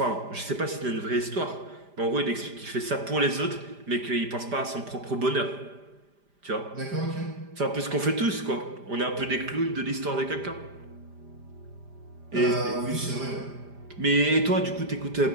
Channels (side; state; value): left; late; 5.0 ms